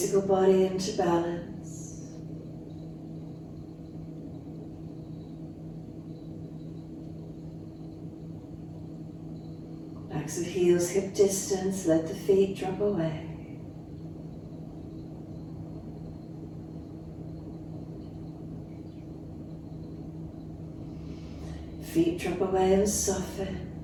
body into balance? Backs of heels hip distance, let the feet drop away. Feet drop away and soften.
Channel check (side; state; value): both; identical; correlation 1.00